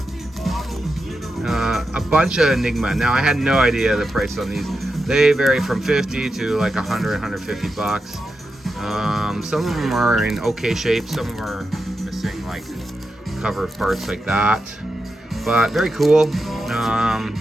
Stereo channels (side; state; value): both; normal; correlation 0.88